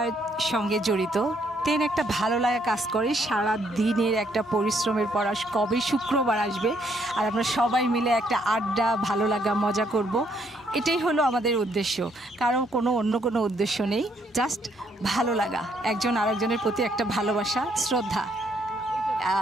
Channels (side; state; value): both; normal; correlation 0.70